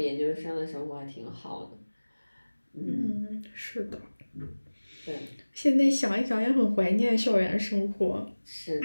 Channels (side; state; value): both; inverted; correlation -1.00